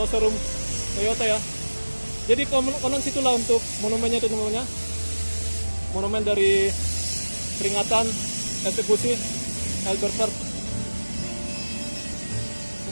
showroom Toyota ya. Jadi konon situlah untuk monumennya itu namanya. Monumen dari peringatan eksekusi Albert Park.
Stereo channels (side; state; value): both; inverted; correlation -1.00